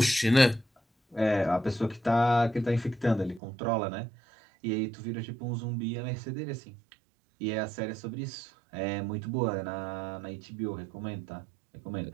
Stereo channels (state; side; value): drops out; left; at 3.4 s